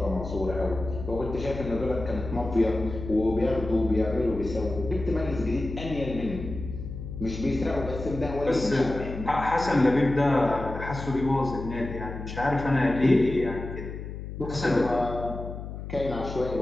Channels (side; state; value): left; noise; hum, 9 dB below the sound